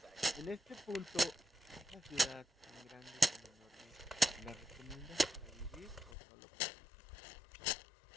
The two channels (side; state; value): right; drops out; at 6.2 s